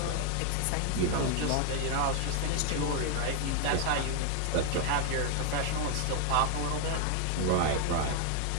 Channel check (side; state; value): both; different; correlation 0.00